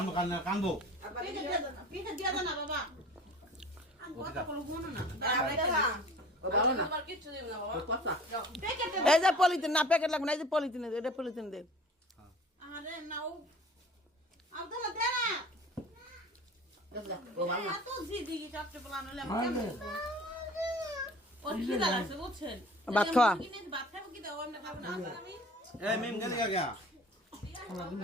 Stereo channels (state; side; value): normal; both; correlation 0.44